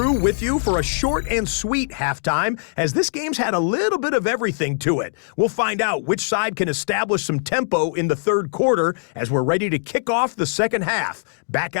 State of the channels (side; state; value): right; silent; digital silence